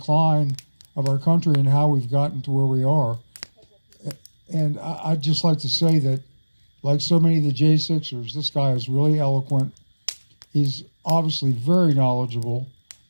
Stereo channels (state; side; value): inverted; both; correlation -1.00